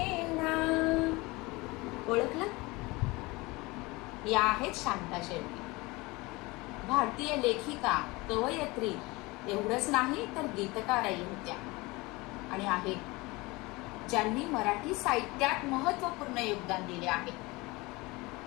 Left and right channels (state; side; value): quieter; right; 23.2 dB